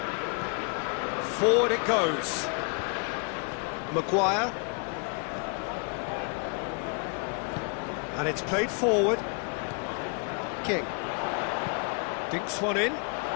Forward it goes. Maguire. And it's played forward. King. Dinks one in.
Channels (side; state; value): right; quieter; 36.9 dB